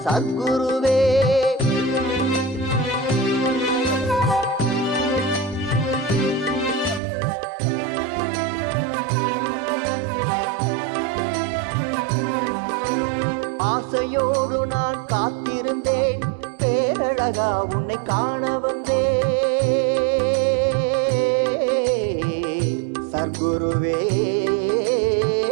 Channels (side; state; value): left; drops out; at 7.0 s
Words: சத்குருவே. ஆசையோடு நான் காத்திருந்தேன், பேரழகா உன்னை காண வந்தேன் சர்க்குருவே.